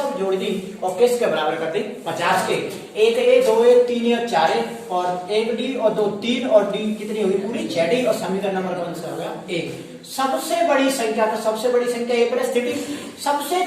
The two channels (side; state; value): both; identical; correlation 1.00